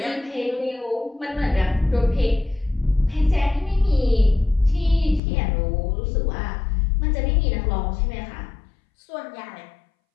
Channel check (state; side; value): drops out; right; at 5.2 s